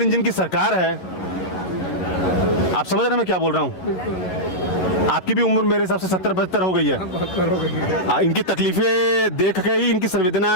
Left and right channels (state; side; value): late; right; 11 ms